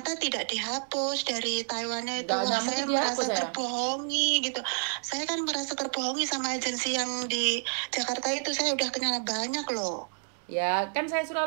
tidak dihapus dari Taiwannya itu. Saya merasa terbohongi gitu. Saya kan merasa terbohongi sama agensi yang di Jakarta itu. Saya udah kenal banyak loh. Ya kan saya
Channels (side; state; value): left; silent; 58 dB below the other